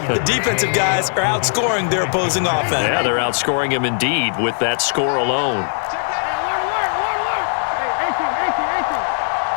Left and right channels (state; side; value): silent; right; digital silence